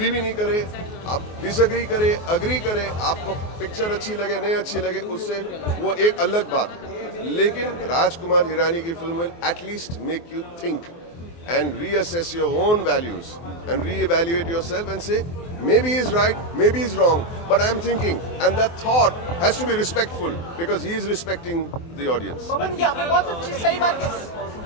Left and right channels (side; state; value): right; late; 24 ms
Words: भी नहीं करें, आप डिसअग्री करें, अग्री करें, आपको पिक्चर अच्छी लगे नहीं अच्छी लगे, उससे वो एक अलग बात है। लेकिन राजकुमार हिरानी की film will at least make you think and reassess your own values and reevaluate yourself and say, maybe he's right, maybe he's wrong, but I'm thinking, and that thought has to be respectful because he is respecting the audience. पवन, ये आपने बहुत अच्छी सही बात कही।